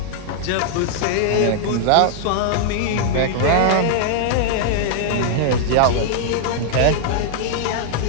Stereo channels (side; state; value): both; different; correlation -0.01